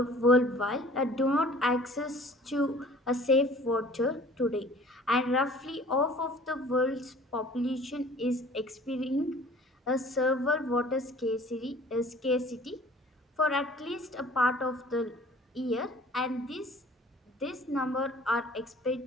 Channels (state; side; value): normal; both; correlation 0.49